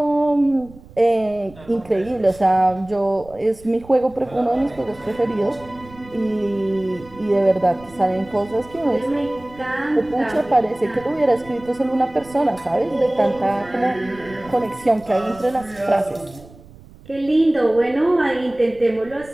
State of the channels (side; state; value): right; noise; rumble, 22 dB below the sound